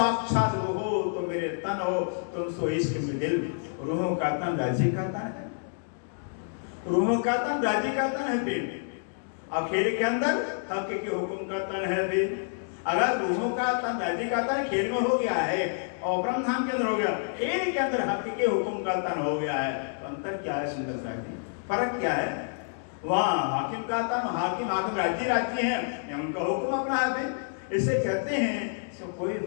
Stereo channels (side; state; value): right; silent; digital silence